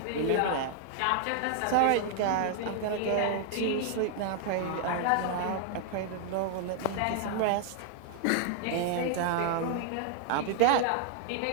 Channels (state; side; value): different; both; correlation 0.00